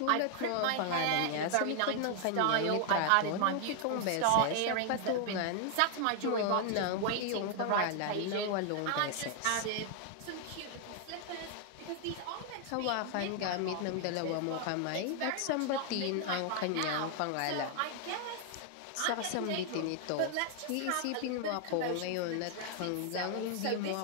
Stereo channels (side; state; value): both; different; correlation 0.00